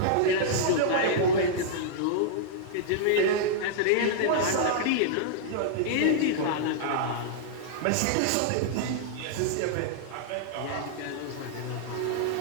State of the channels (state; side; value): different; both; correlation -0.01